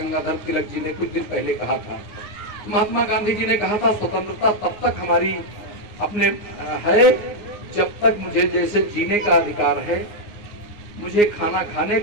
तिलक जी ने कुछ दिन पहले कहा था। महात्मा गांधी जी ने कहा था स्वतंत्रता तब तक हमारी अपने है जब तक मुझे जैसे जीने का अधिकार है, मुझे खाना खाने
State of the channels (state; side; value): late; right; 9.6 ms